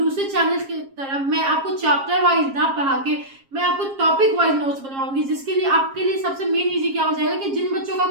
चैनल की तरह मैं आपको चैप्टर वाइज ना पढ़ा के मैं आपको टॉपिक वाइज नोट्स बनवाऊंगी, जिसके लिए आपके लिए सबसे मेन इजी क्या हो जाएगा कि जिन बच्चों का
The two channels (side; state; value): left; late; 7.4 ms